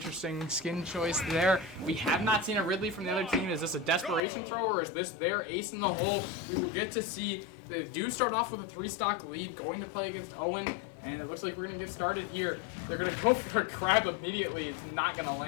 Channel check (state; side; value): drops out; right; at 4.2 s